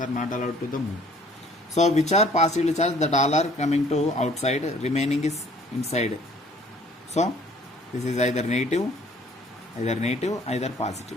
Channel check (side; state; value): both; normal; correlation 0.56